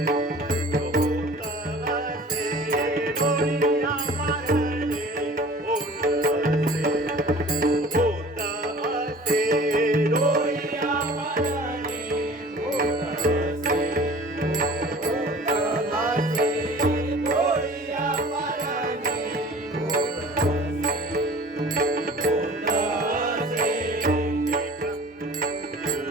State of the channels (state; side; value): normal; both; correlation 0.45